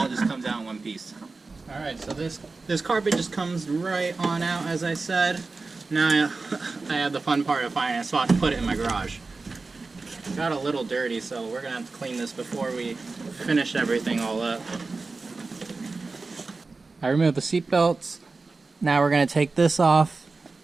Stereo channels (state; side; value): quieter; left; 3.9 dB